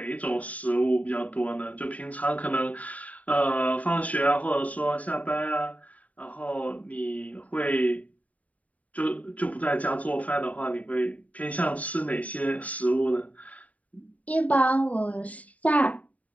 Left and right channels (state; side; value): late; right; 0.069 ms